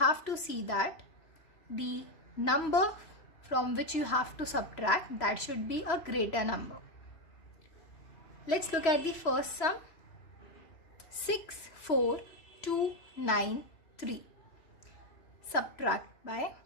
to see that the number from which you have to subtract, that should be a greater number. Let's look at the first sum. 6, 4, 2, 9, 3. Subtract by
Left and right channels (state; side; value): late; right; 3.0 ms